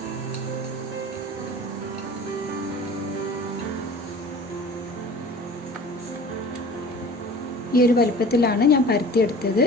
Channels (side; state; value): both; normal; correlation 0.42